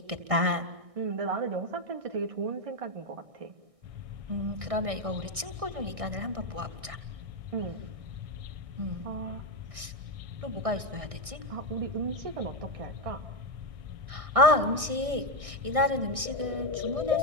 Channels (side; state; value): left; late; 1.6 ms